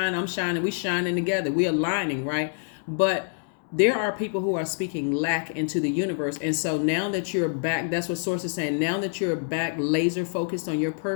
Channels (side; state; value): right; silent; 61 dB below the other